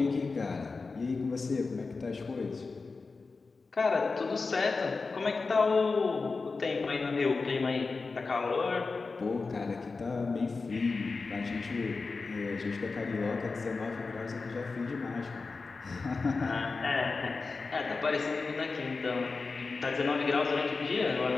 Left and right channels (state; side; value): quieter; right; 4.2 dB